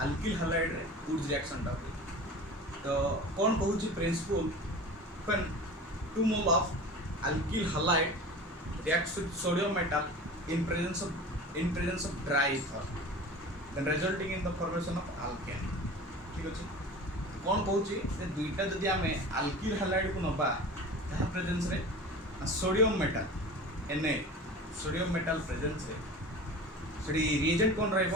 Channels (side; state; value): both; normal; correlation 0.36